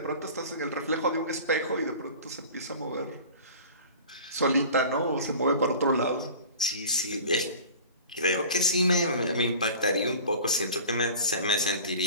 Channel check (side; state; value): both; inverted; correlation -0.40